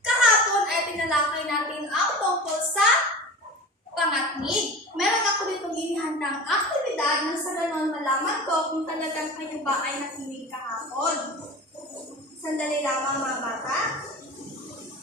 Kahapon ay tinalakay natin ang tungkol sa pangatnig. Meron ako ditong inihandang aktibidad nang sa ganon malaman ko kung talagang kayo ba ay nakinig kahapon. Sandali lamang mga bata.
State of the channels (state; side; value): normal; both; correlation 0.34